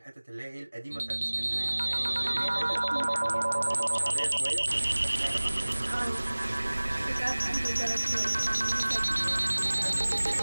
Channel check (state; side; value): inverted; both; correlation -1.00